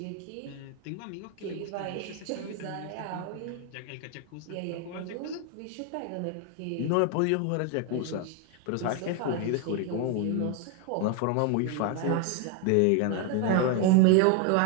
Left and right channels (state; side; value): different; both; correlation 0.01